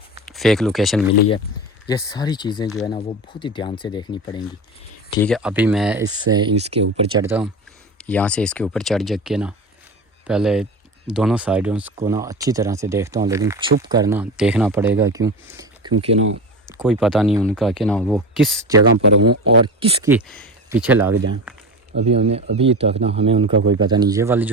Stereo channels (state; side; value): normal; both; correlation 0.27